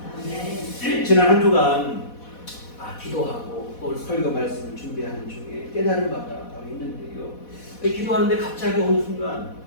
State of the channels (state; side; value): late; right; 4.1 ms